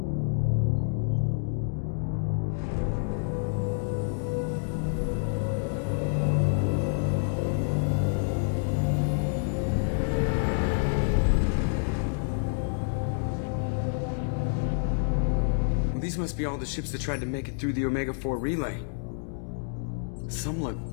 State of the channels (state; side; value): silent; right; digital silence